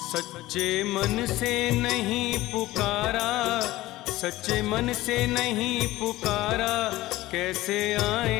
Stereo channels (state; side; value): quieter; right; 17.4 dB